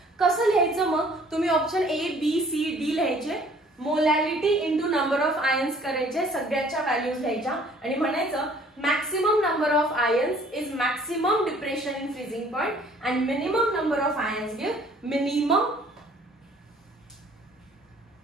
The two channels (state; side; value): normal; both; correlation 0.56